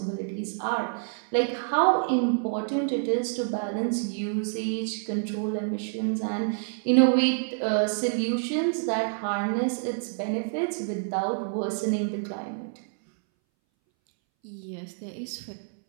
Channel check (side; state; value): left; silent; 60 dB below the other